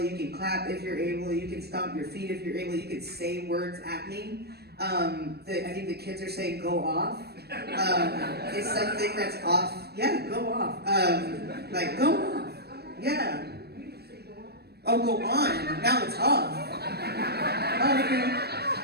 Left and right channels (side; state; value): left; late; 0.47 ms